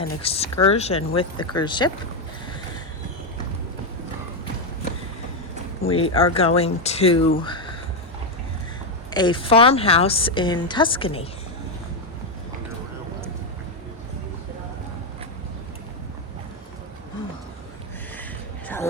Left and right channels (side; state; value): both; normal; correlation 0.04